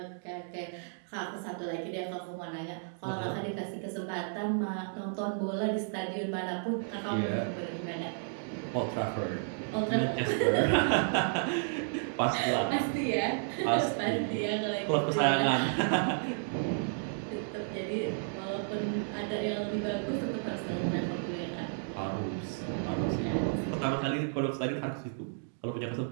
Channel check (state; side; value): silent; left; digital silence